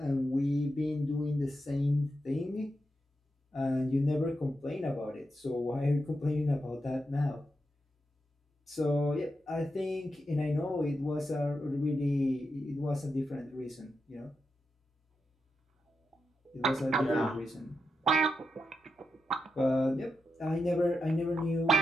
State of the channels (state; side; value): normal; both; correlation 0.87